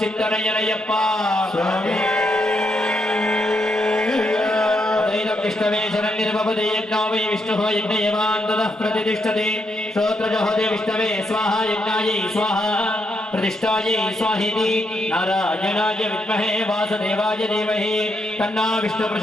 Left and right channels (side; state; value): both; normal; correlation 0.79